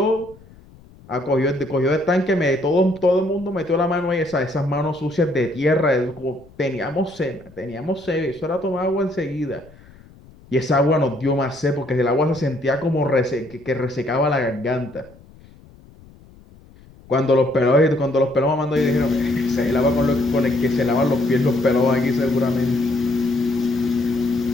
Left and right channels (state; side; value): noise; left; rumble, 24 dB below the sound